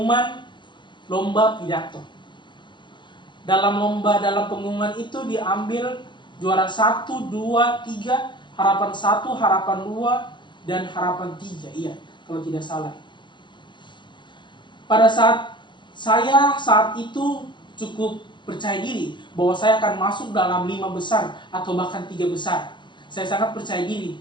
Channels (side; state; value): right; late; 0.23 ms